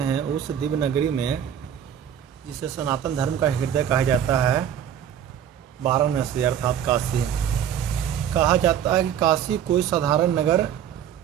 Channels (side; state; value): left; quieter; 9.4 dB